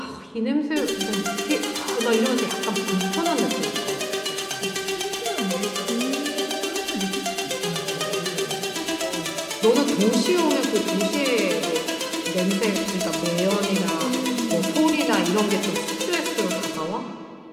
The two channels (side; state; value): both; identical; correlation 1.00